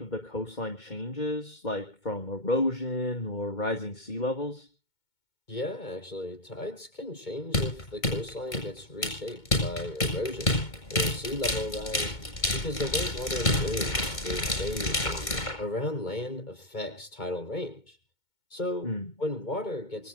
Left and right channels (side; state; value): right; late; 2.2 ms